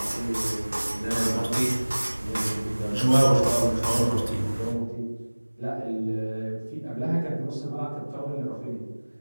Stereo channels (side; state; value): both; inverted; correlation -1.00